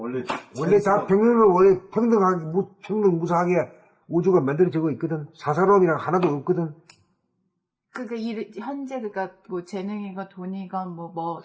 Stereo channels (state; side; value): identical; both; correlation 1.00